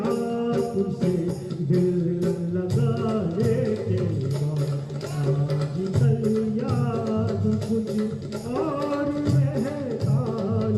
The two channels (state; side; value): identical; both; correlation 1.00